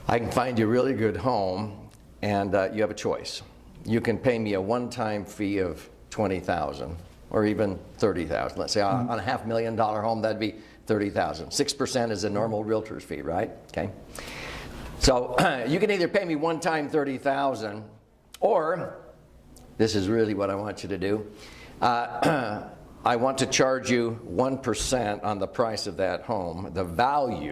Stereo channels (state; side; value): identical; both; correlation 1.00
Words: I can find you a really good home, and you have a choice. You can pay me a one-time fee of $20,000 or even $30,000. Let's say on a $500,000 home, that'd be $30,000. 6% is a normal realtor's fee, right? Okay. So you can either pay me one-time $30,000, or this is really what I want you to do. I want to charge you 1% on the price of that home, the